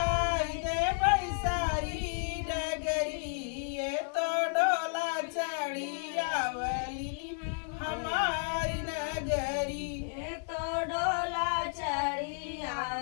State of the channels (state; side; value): silent; right; 56 dB below the other